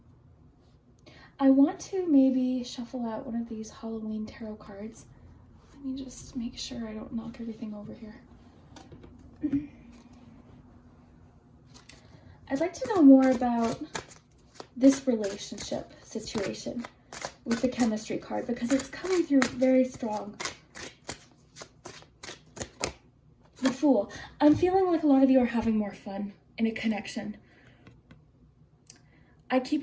I want to maybe shuffle out one of these Halloween tarot cards. Let me just make sure I don't knock everything over here. I'd like to know more about this relationship situation with the chemistry card because it's coming through very strong. The Fool. I'm feeling like a lot of you are having more fun in a connection. I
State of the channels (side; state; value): both; identical; correlation 1.00